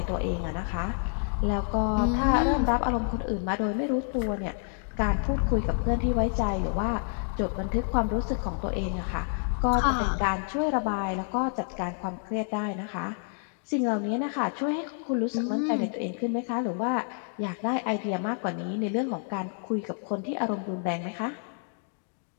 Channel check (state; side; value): silent; right; 58 dB below the other